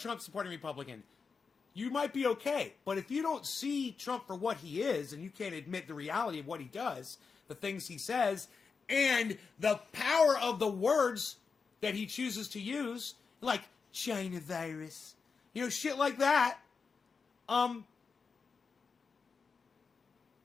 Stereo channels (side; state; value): right; quieter; 5.2 dB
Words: Republican, you might be okay. But if you don't see Trump for what he is, and you can't admit the reality of what he does, the things he says, and the power of the words that he chooses to use, like China virus, you know, shit like that,